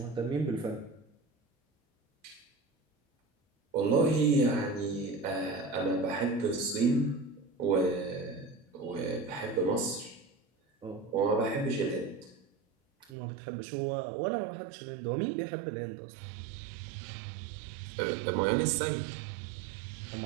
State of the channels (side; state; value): left; drops out; at 13.1 s